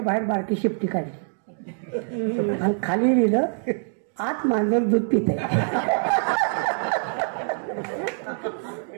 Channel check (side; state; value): left; silent; digital silence